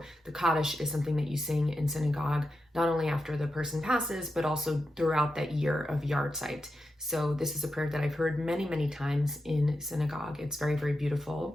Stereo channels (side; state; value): both; normal; correlation 0.88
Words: the Kaddish is something that you sing in synagogue, not only after the person passes, but also throughout that year of yard site. So this is a prayer that I've heard many, many times in synagogue. It's very, very